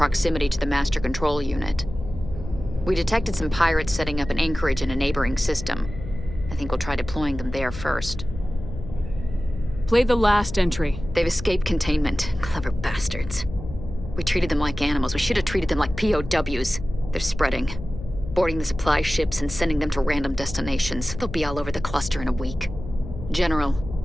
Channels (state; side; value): noise; left; hum, 11 dB below the sound